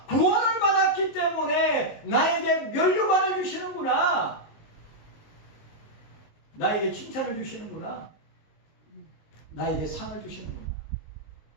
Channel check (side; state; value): right; late; 19 ms